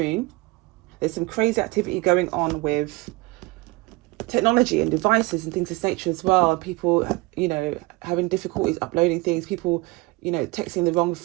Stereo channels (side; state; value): left; quieter; 22.6 dB